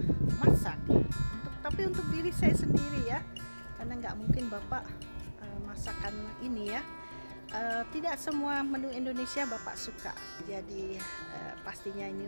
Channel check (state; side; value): inverted; both; correlation -1.00